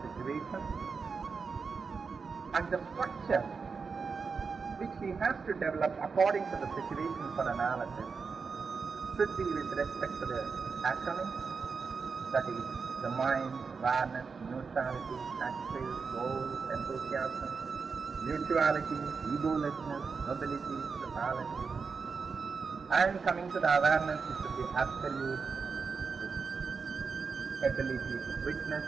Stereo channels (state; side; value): quieter; left; 5.1 dB